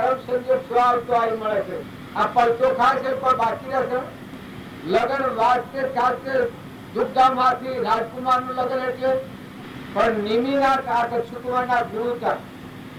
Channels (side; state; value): both; identical; correlation 1.00